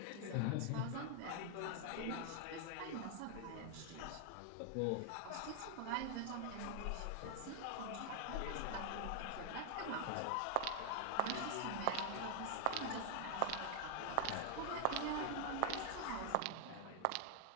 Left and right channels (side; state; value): both; different; correlation 0.00